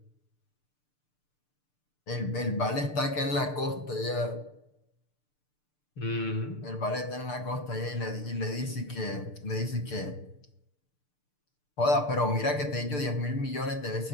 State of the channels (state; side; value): late; right; 6.7 ms